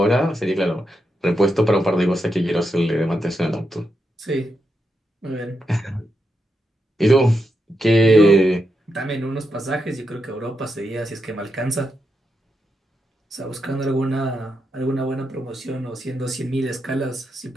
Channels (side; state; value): both; normal; correlation 0.85